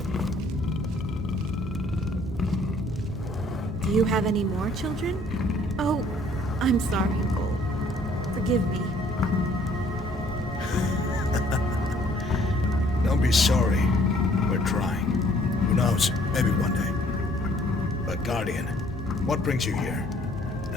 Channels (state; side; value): normal; both; correlation 0.60